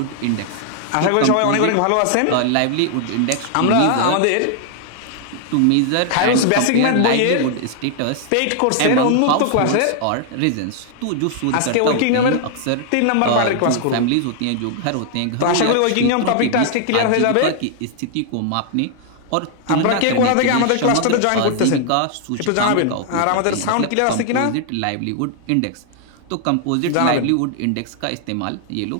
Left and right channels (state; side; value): different; both; correlation 0.00